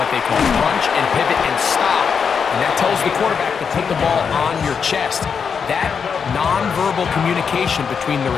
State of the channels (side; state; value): right; quieter; 6.3 dB